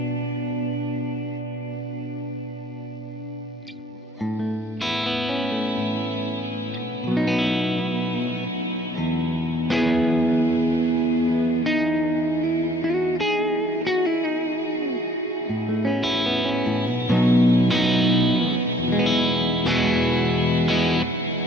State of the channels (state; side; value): normal; both; correlation 0.60